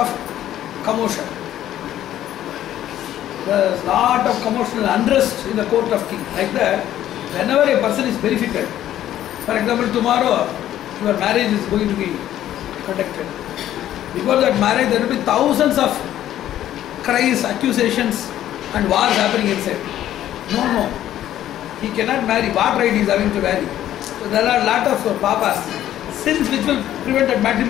commotion. There was lot of commotion and unrest in the court of king. Like that, whenever a person is verified, for example, tomorrow your marriage is going to be conducted. Before that marriage, there will be thousands of cries, accusations, and wars happening inside. No, he cannot marry. What right he is having to marry? So there are a lot of papas, sins which will prevent that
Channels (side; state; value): right; quieter; 12.2 dB